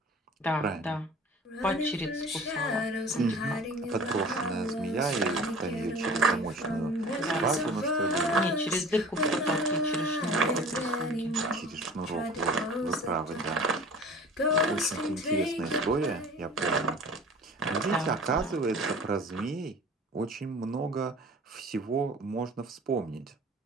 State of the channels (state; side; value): normal; both; correlation 0.42